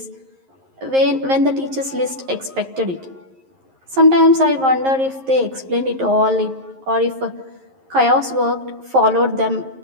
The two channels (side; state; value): left; late; 11 ms